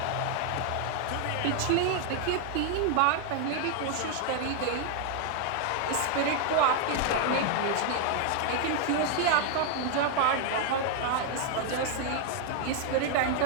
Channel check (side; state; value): both; different; correlation 0.00